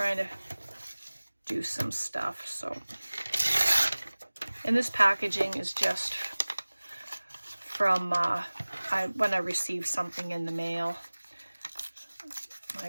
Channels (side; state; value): both; inverted; correlation -1.00